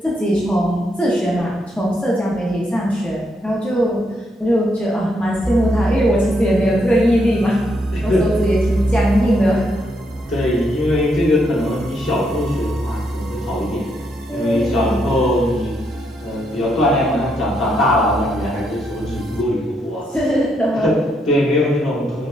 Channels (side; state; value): both; normal; correlation 0.77